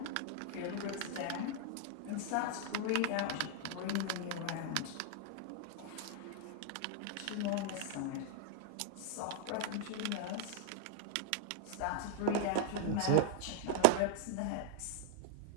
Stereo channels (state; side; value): different; both; correlation 0.00